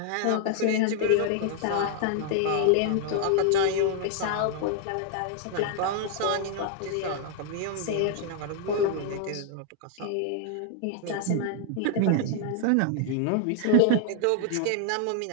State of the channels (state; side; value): different; both; correlation -0.01